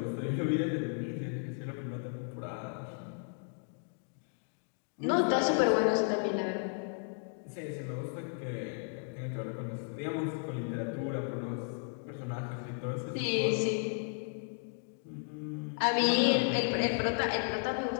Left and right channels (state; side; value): silent; right; 55 dB below the other